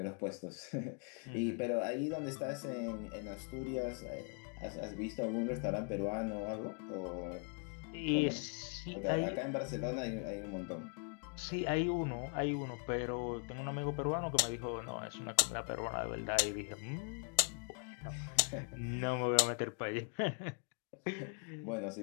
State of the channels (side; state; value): right; quieter; 39.3 dB